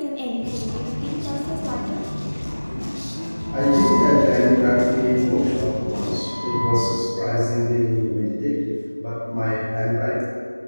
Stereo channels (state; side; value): inverted; both; correlation -1.00